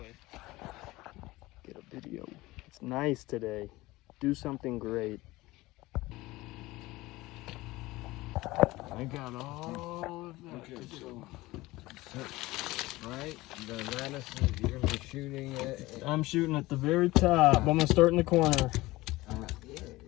Get a video. It's nice today. Do something great. I got all of that. Okay, so right, the lattice you're gonna be shooting at. I'm shooting at the very top. I'm gonna start in the corner.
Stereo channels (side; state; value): right; quieter; 19.4 dB